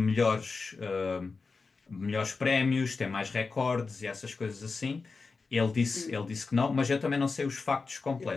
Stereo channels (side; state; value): right; quieter; 4.4 dB